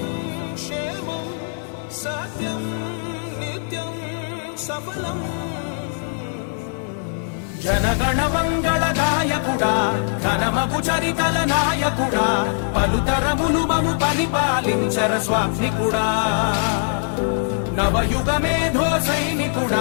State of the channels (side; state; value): right; silent; 61 dB below the other